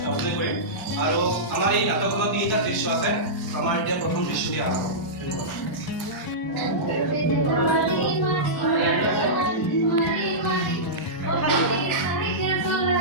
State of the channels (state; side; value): late; right; 1.0 ms